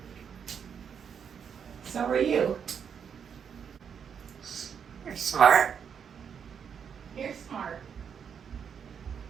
So are you. You're smart. You're smart.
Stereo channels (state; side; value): quieter; left; 7.3 dB